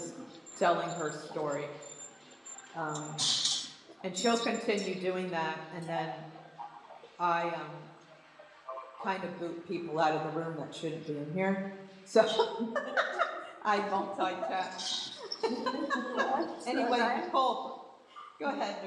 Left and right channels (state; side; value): identical; both; correlation 1.00